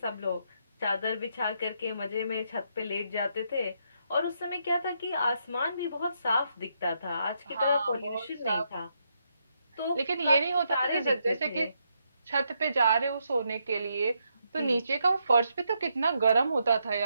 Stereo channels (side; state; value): both; inverted; correlation -0.78